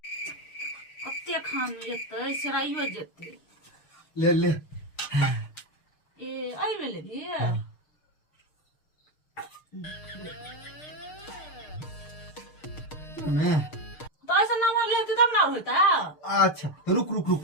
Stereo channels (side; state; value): right; late; 6.6 ms